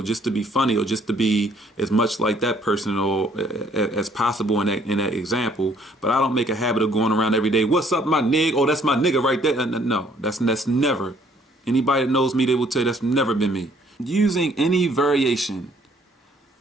just to be funny, or just to be as much like that person or as possible in that example. But I don't make a habit of going around every day, what's up, my nig? Oh, that's my nigga right there. No, that's never. Anybody that knows me, they will tell you that's never been me. Using any variation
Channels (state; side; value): normal; both; correlation 0.62